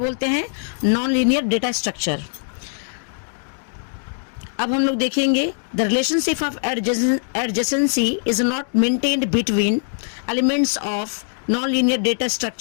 हैं, नॉन-लीनियर डेटा स्ट्रक्चर। अब हम लोग देखेंगे the relationship of adjacency is not maintained between elements of non linear data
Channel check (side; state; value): right; silent; digital silence